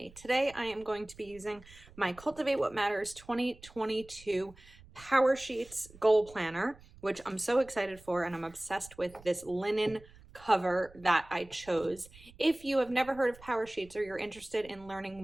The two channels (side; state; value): right; noise; rumble, 22 dB below the sound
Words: Today I am going to be using my Cultivate What Matters 2022 Powersheets Goal Planner, which I'm so excited for, and I'm obsessed with this linen cover that I chose. If you have never heard of Powersheets or you're interested in